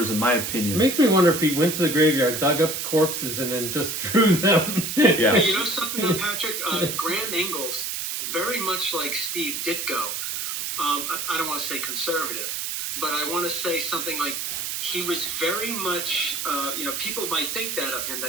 in my opinion. It makes me wonder if he went to the graveyard, dug up corpses, and then just drew them. Yeah. But you know something though, Patrick? Graham Ingles, very much like Steve Ditko, I don't want to say conservative, but I want to say something like he was very much, people might think that of him,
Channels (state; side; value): noise; right; hiss, 3 dB below the sound